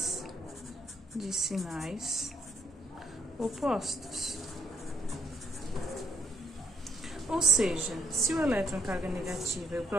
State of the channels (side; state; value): both; normal; correlation 0.68